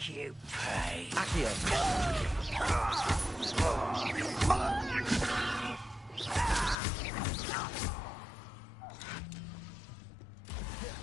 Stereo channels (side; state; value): right; drops out; at 6.8 s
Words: you pay. Accio!